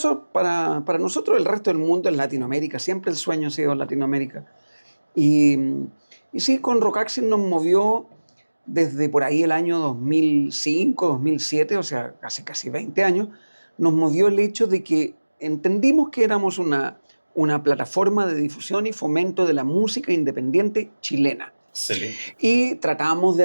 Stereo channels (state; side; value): inverted; both; correlation -1.00